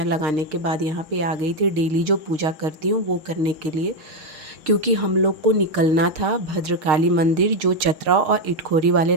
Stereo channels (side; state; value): left; late; 6.5 ms